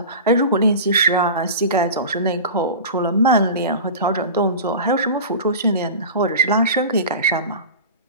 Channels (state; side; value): inverted; both; correlation -0.32